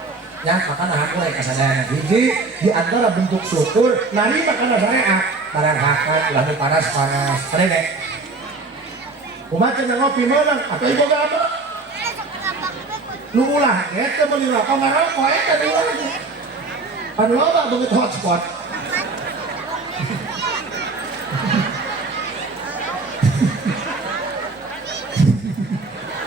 ya makanya hampura ka sadayana hiji di antara bentuk syukur narima kana syariat barang hakat ulah panas-panas rene kumaha cenah ngopi meunang atuh ieu boga apa nu ulah eta meuli rokok ngarokok eta di urang pan loba begitu hotspot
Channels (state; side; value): quieter; left; 3.6 dB